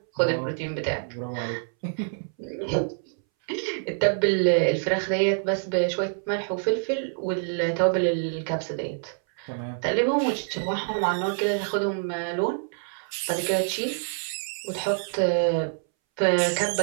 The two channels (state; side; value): silent; left; 61 dB below the other